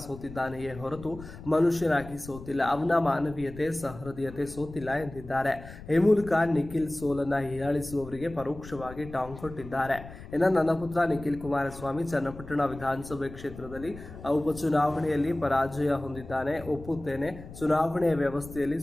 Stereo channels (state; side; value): noise; left; rumble, 15 dB below the sound